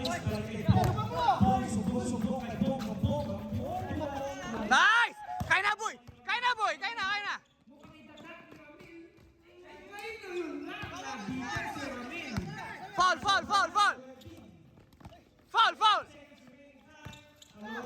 balik kay Bong. Bong, subok kay Bong. Nice! Kaya na, boy. Kaya na, boy. Kaya na, kaya na. Foul, foul, foul, foul. Foul, foul.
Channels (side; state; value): both; identical; correlation 1.00